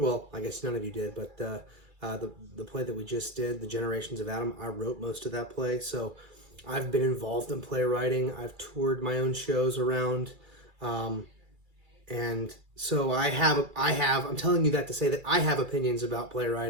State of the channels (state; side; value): late; left; 2.3 ms